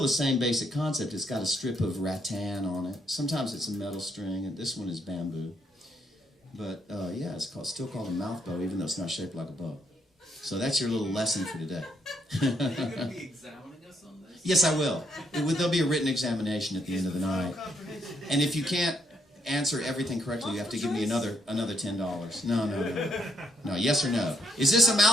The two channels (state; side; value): normal; both; correlation 0.74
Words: the same basic concept. It's got a strip of rattan on it. Sometimes it's a metal string, and this one is bamboo. But it's still called a mouth bow, even though it's not shaped like a bow. So that's your little lesson for today. Are you going to be examining us on this? Yes, I will. There'll be a written examination at the end of the night. And if you can't answer everything correctly, you have to give me another $10. No. No, yes or no? Is this a